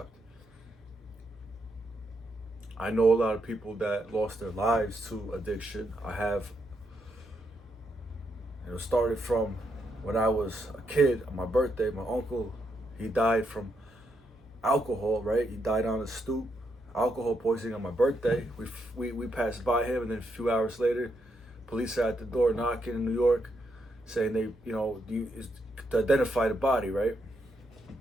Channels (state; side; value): normal; both; correlation 0.79